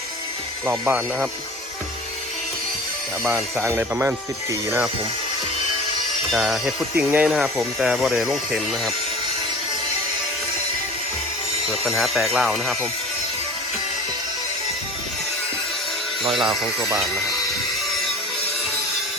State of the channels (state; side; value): normal; both; correlation 0.38